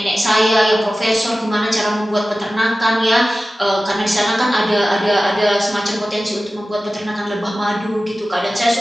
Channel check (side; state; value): both; normal; correlation 0.95